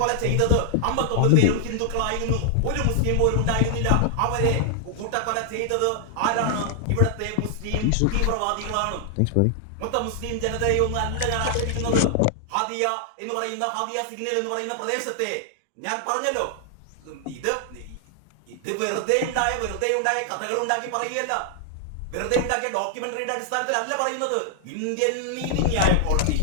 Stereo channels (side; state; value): both; different; correlation 0.00